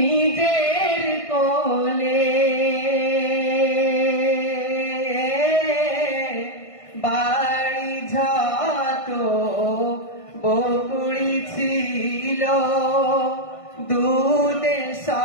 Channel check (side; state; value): right; late; 1.6 ms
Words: কোলে, বাড়ি যত বকুড়ি ছিল দুধে